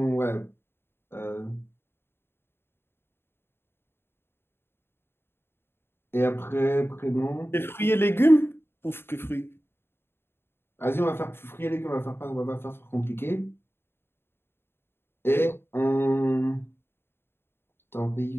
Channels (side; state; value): right; late; 0.11 ms